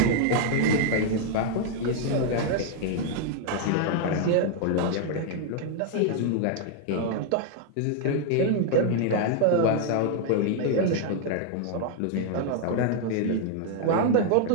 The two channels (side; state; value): both; different; correlation 0.00